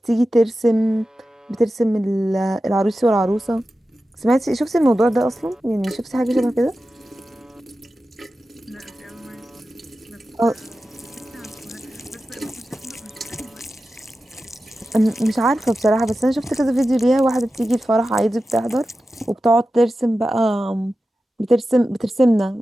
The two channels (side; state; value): both; normal; correlation 0.93